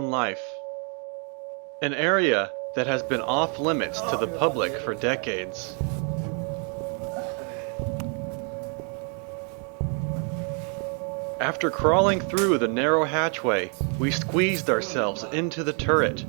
life. An area that has been off limits to the public for decades. After crawling through the narrow hatchway, we squeezed ourselves into the turret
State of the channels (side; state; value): left; quieter; 39.2 dB